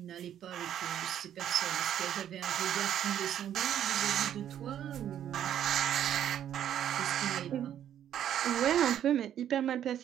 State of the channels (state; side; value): quieter; left; 10.4 dB